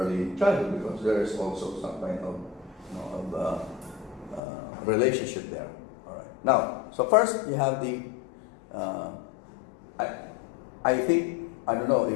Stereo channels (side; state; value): right; drops out; at 4.4 s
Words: childhood, because there is also some kind of relationship there. All right. Now, so first you have the. I think I don't know